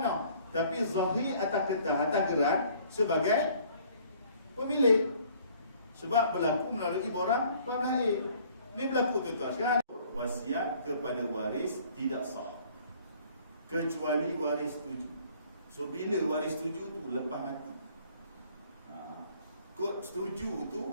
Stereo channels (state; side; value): inverted; both; correlation -0.57